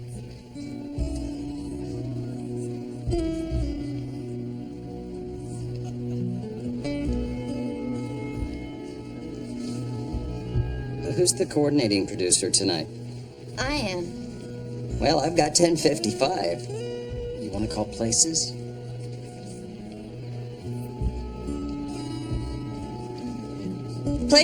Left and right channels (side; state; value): both; identical; correlation 1.00